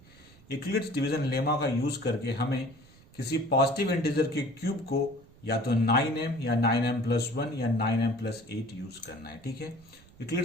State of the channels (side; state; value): right; noise; rumble, 25 dB below the sound